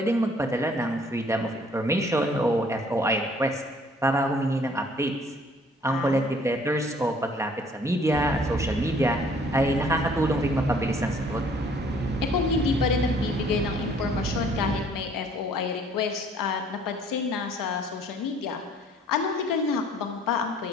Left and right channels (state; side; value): normal; both; correlation 0.58